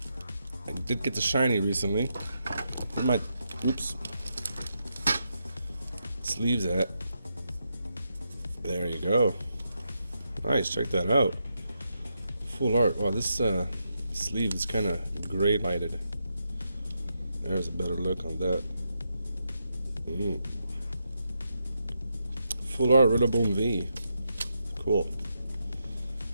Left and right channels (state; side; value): inverted; both; correlation -0.83